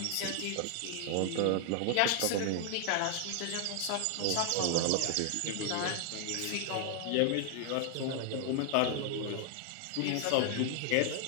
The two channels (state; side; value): different; both; correlation 0.00